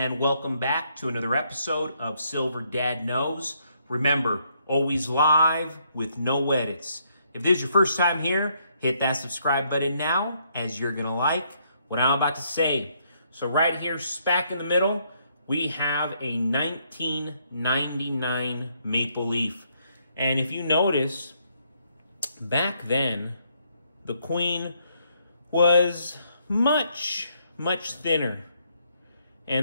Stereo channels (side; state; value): both; inverted; correlation -0.72